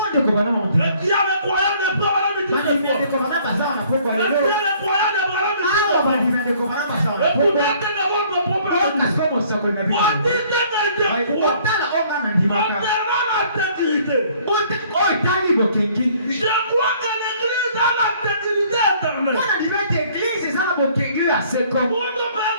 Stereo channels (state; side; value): inverted; both; correlation -0.58